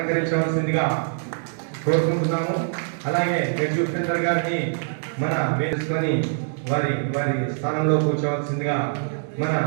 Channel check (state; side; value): silent; left; digital silence